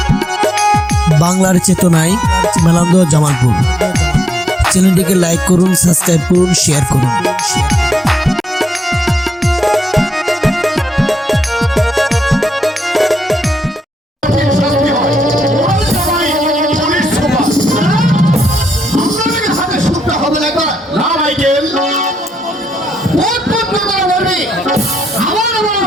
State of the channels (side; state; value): both; normal; correlation 0.83